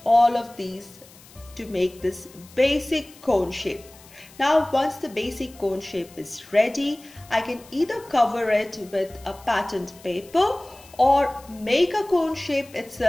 all of these to make this basic cone shape. Now once the basic cone shape is ready, I can either cover it with a patterned paper or make a cone shape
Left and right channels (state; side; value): noise; left; hiss, 23 dB below the sound